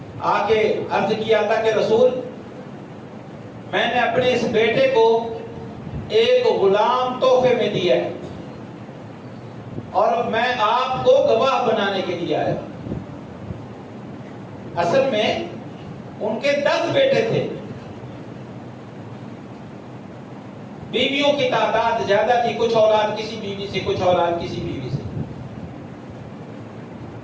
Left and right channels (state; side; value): identical; both; correlation 1.00